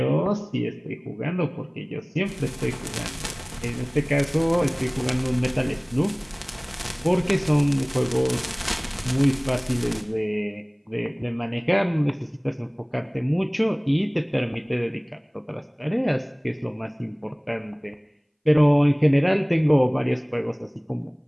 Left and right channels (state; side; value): identical; both; correlation 1.00